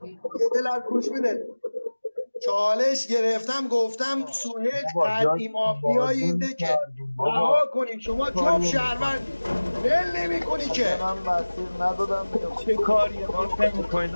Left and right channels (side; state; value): both; inverted; correlation -1.00